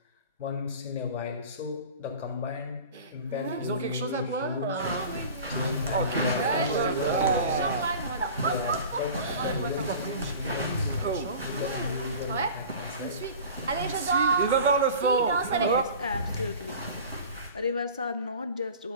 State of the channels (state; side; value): inverted; both; correlation -0.39